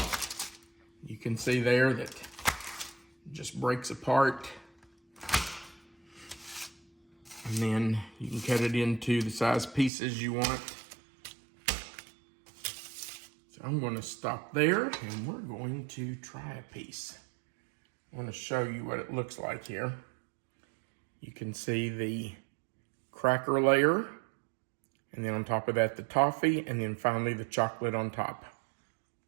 You can see there that it just breaks apart. And then you can cut it into the size pieces you want. So I'm going to stop there and we're going to try a piece. I want to show you what it looks like here. You can see the cracker layer, and then on top of that the toffee, and then finally the chocolate on top.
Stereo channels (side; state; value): left; drops out; at 9.9 s